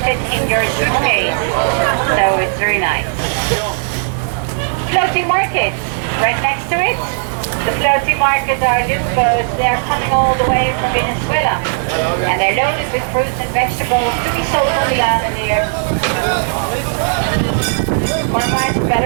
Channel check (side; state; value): left; silent; digital silence